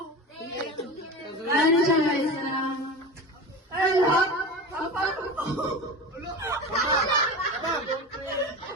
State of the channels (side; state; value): both; normal; correlation 0.29